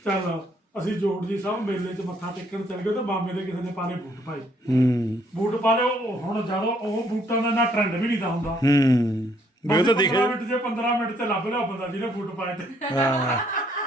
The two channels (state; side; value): normal; both; correlation 0.67